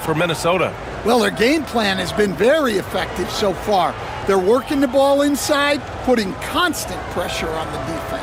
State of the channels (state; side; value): identical; both; correlation 1.00